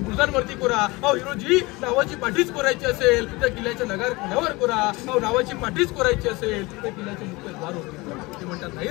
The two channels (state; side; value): quieter; right; 23.2 dB